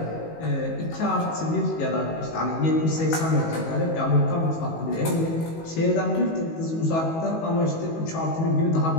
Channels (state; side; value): late; right; 19 ms